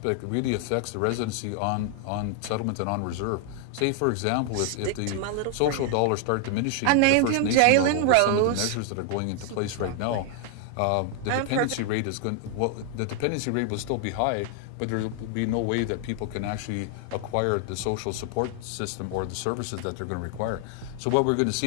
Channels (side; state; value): both; different; correlation 0.00